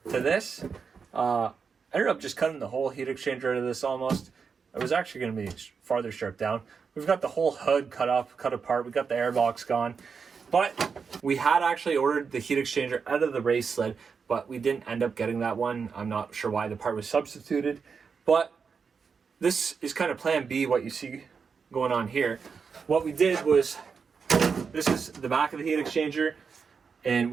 to this. I ended up just cutting the whole heat exchanger out of this almost. It was actually going to be farther stripped down. We've got the whole hood cut apart. We got the airbox gone. But we had actually ordered the heat exchanger out of the race sled, but we didn't end up getting that one. I'm not sure why the part was substituted. But this is kind of plan B, what you see going on here. What we did was, this is the back of the heat exchanger, and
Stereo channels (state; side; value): quieter; left; 5.8 dB